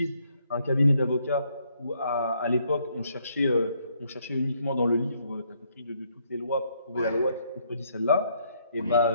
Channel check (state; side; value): inverted; both; correlation -0.71